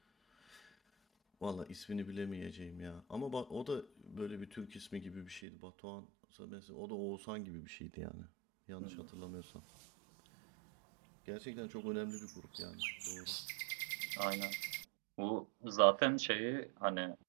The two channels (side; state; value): left; drops out; at 5.4 s